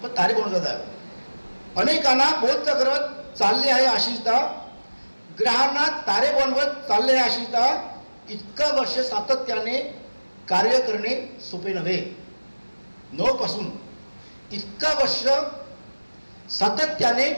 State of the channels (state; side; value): inverted; both; correlation -1.00